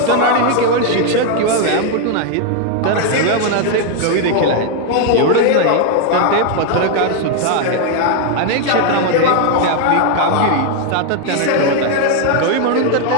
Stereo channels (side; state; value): both; different; correlation 0.00